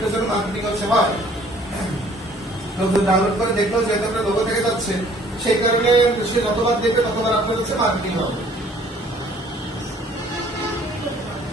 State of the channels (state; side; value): normal; both; correlation 0.56